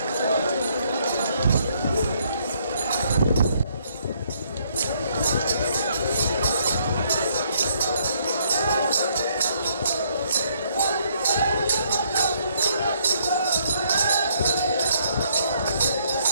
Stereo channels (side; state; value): both; inverted; correlation -0.69